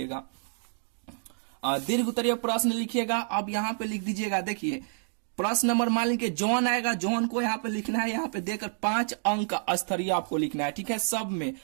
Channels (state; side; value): silent; left; digital silence